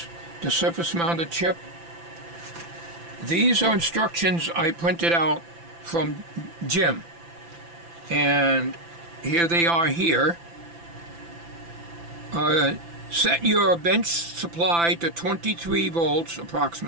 the surface mounted chip. These are instructions I printed out from Jim, and here they are here. Set your bench supply to 23 volts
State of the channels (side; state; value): left; late; 5.9 ms